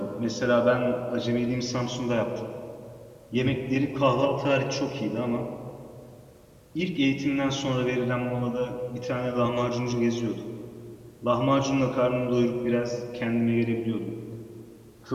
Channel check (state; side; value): identical; both; correlation 1.00